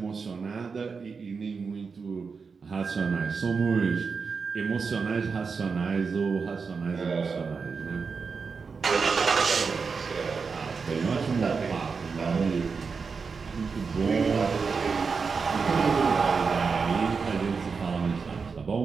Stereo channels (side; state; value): left; quieter; 5.1 dB